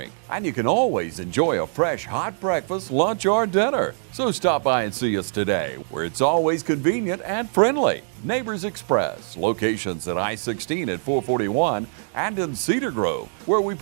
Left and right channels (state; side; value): silent; left; digital silence